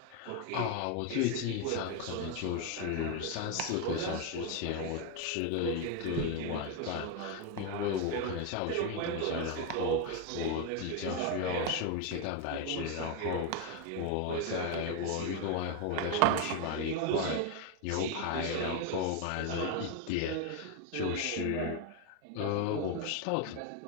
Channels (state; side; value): different; both; correlation 0.02